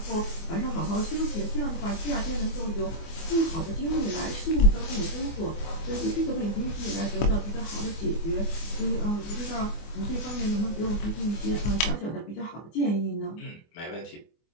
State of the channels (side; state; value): right; late; 24 ms